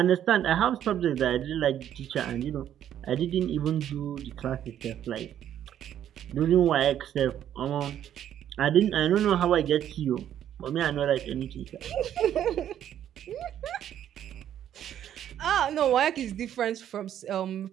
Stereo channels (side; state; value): left; quieter; 10.6 dB